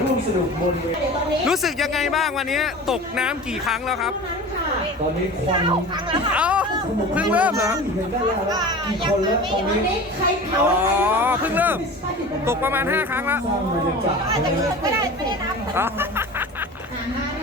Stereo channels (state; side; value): normal; both; correlation 0.36